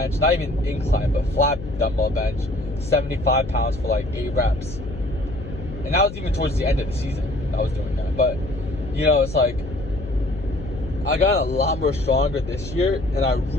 not even incline, but flat dumbbell bench, 75 pounds for like 8 reps. And that was even towards the end of the season I was doing that. But, you know, it's like, I got a lot more stronger this year, and I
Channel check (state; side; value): noise; left; hum, 10 dB below the sound